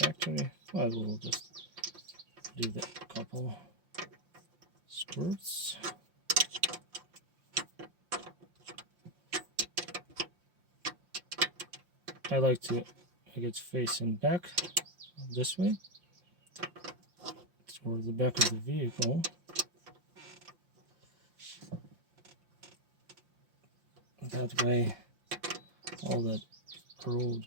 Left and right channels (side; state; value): left; late; 5.7 ms